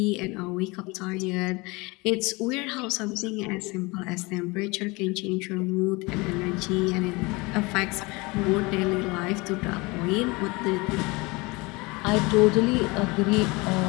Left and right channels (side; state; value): right; quieter; 25.0 dB